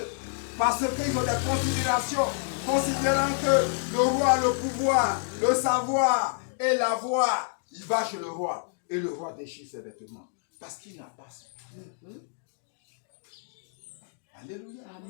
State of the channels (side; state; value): right; silent; digital silence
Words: parce qu'ils ont des considérations, considérant que le roi a le pouvoir, le savoir et la voix, il va chez le roi et le roi déchire ses vêtements parce qu'il n'a pas su. Alléluia.